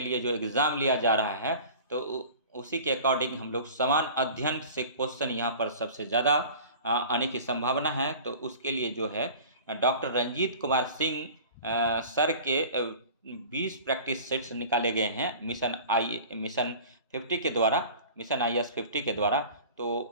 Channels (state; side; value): inverted; both; correlation -0.41